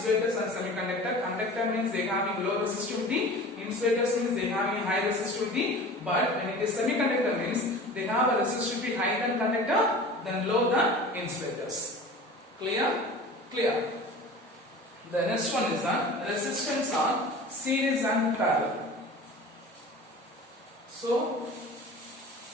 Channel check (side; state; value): both; normal; correlation 0.39